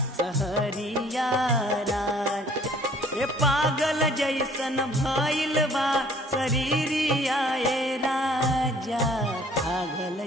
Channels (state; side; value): normal; both; correlation 0.56